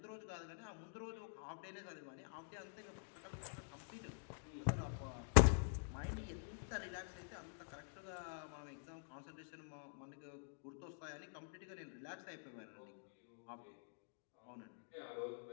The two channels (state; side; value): silent; right; digital silence